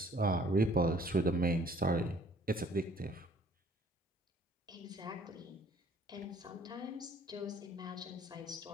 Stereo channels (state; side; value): normal; both; correlation 0.57